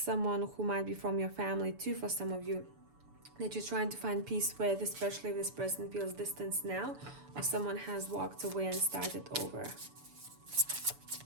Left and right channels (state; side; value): late; left; 7.0 ms